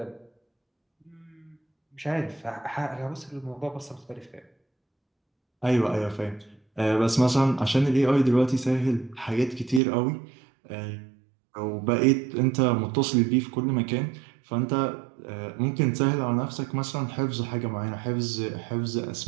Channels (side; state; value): left; drops out; at 9.8 s